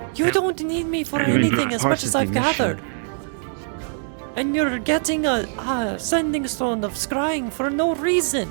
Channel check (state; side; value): silent; left; digital silence